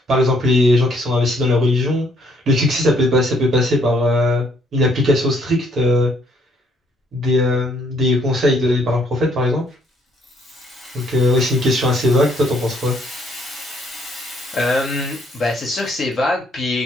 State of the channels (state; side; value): normal; both; correlation 0.67